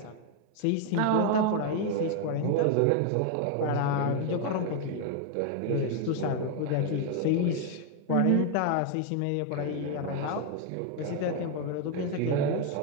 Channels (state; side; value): different; both; correlation 0.01